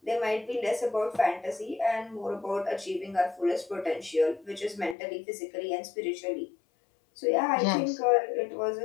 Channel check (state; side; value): drops out; right; at 5.0 s